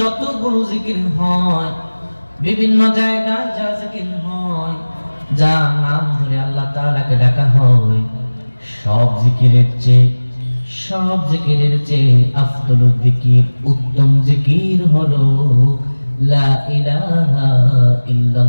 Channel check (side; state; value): both; inverted; correlation -1.00